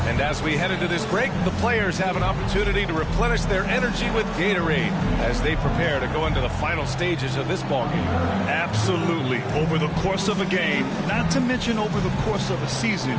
And as we head into this break, the players have an opportunity to replenish their energy with Gatorade as they prepare to go into the final stages of this ballgame. Absolutely. Over the course of a game, not to mention over the course of a season, you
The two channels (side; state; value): both; identical; correlation 1.00